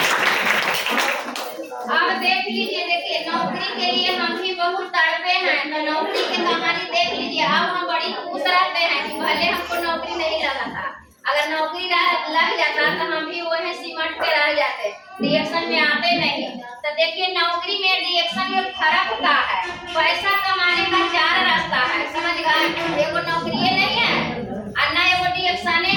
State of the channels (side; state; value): both; identical; correlation 1.00